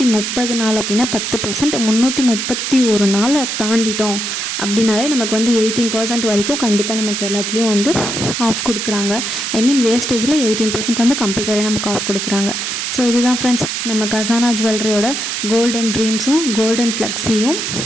நாள் அப்படின்னா 10%, 331 நாளை தாண்டிட்டோம் அப்படின்னாலே நமக்கு வந்து 18% வரைக்கும் கண்டிப்பாக நமக்கு எல்லாத்துலேயும் வந்து ஆஃப் கொடுக்குறாங்க. ஐ மீன் வேஸ்டேஜில் 18% வந்து கம்பல்சரியாக நமக்கு ஆஃப் கொடுக்குறாங்க. ஸோ இதுதான் ஃப்ரெண்ட்ஸ் நம்ம கசானா ஜுவல்லரியோட கோல்டன் ட்ரீம்ஸும் கோல்டன் ஃப்ளெக்ஸியும்.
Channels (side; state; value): right; noise; hiss, 3 dB below the sound